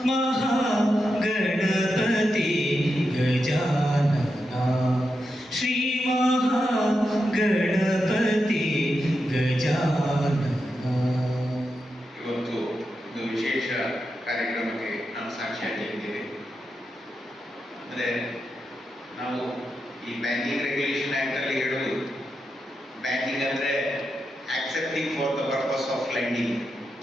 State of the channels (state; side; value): normal; both; correlation 0.87